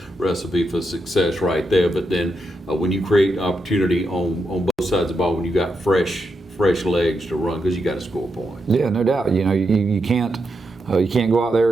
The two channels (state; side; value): normal; both; correlation 0.84